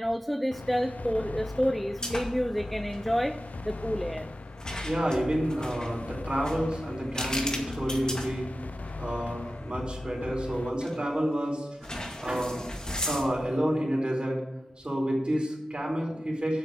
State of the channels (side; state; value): both; normal; correlation 0.93